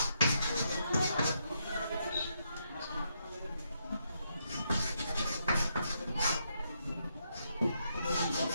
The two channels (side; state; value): both; inverted; correlation -0.79